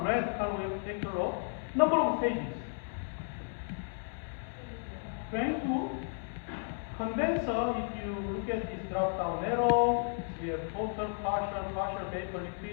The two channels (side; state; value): right; silent; 55 dB below the other